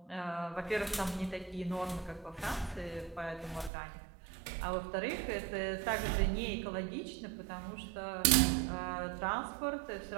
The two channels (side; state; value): left; drops out; at 3.7 s